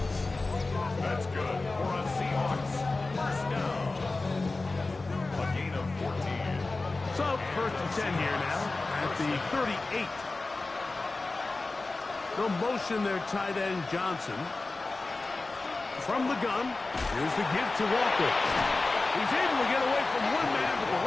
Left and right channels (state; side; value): quieter; right; 3.4 dB